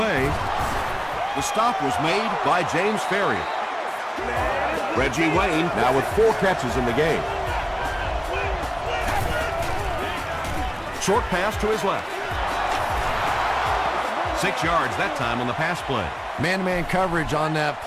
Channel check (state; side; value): identical; both; correlation 1.00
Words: The stop was made by James Ferrier. Reggie Wayne now with 4 catches in the game. Short pass to his left. 6 yards that time on the pass play. Man-to-man coverage on that